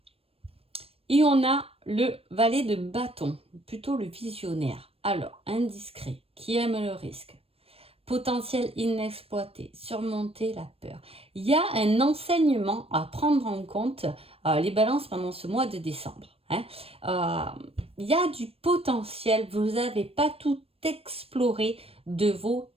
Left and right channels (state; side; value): late; left; 0.28 ms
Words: Et on a le valet de bâton, plutôt le visionnaire. Alors, indiscret, qui aime le risque, potentiel inexploité, surmonter la peur. Il y a un enseignement à prendre en compte, les balances pendant ce mois de décembre. Il y a du potentiel, vous n'avez pas tout exploré de vos